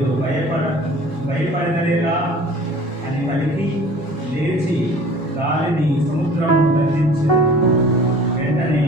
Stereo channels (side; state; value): both; normal; correlation 0.46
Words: భయపడలేరా అని పలికి లేచి గాలిని సముద్రము గర్జించి వెంటనే